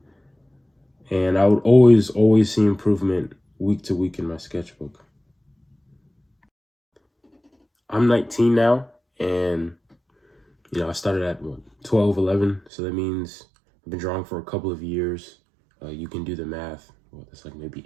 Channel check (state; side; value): drops out; left; at 12.7 s